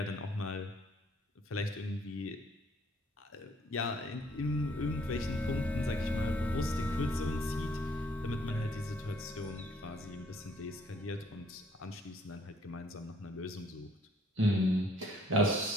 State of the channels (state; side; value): normal; both; correlation 0.64